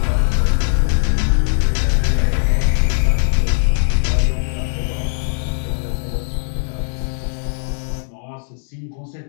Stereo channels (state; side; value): silent; right; digital silence